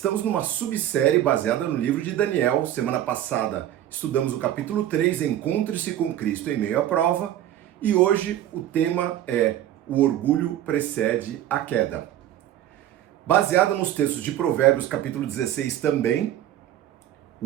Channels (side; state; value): left; quieter; 12.0 dB